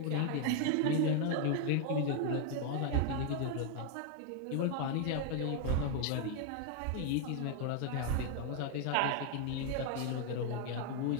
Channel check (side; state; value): both; different; correlation 0.00